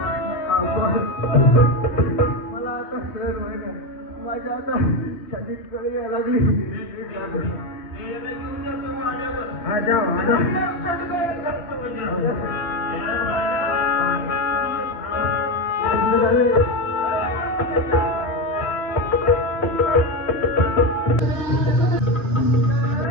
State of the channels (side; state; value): right; late; 3.6 ms